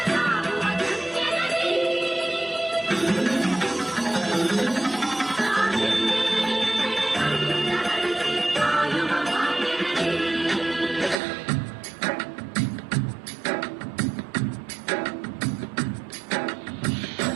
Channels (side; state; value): left; drops out; at 11.2 s